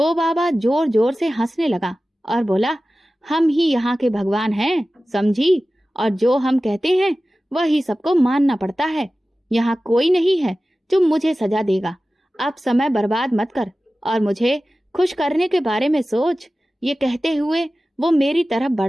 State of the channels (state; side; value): normal; both; correlation 0.96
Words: बाबा जोर जोर से हंसने लगा और बोला, हम ही यहाँ के भगवान हैं, समझी, और जो हम कहते हैं वही सबको मानना पड़ता है। यहाँ कोई नहीं है जो मुझे सजा देगा। अब समय बर्बाद मत कर और मुझे खुश करने के बारे में सोच। ये कहते हुए वो मेरी तरफ